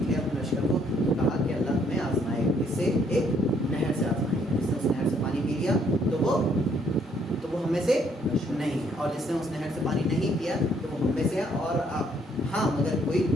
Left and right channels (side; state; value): both; normal; correlation 0.67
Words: اپنے لشکر کو، تو کہا کہ اللہ تمہیں آزمائے، اس سے ایک نہر سے آزمائے گا. جس نے اس نہر سے پانی پی لیا تو وہ ہم میں سے نہیں ہے، اور جس نے اس نہر سے پانی نہیں پیا تو وہ ہم میں سے ہے، اور ہاں مگر کوئی